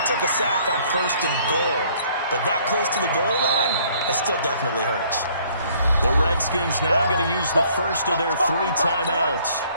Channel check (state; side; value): inverted; both; correlation -0.60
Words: took a sack on 1st and goal. But that close to the goal line, that still definitely hurts. The Redskins now going to use the first of their 3 timeouts